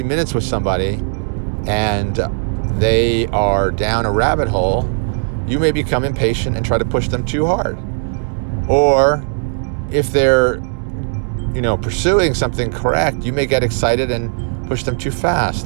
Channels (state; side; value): silent; left; digital silence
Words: minutes with somebody and they are down a rabbit hole, you may become impatient and try to push them too hard. Or if they're, pursuing something correct, you may get excited and push them too